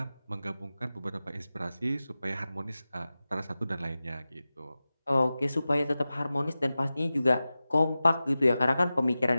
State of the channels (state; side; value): inverted; both; correlation -0.95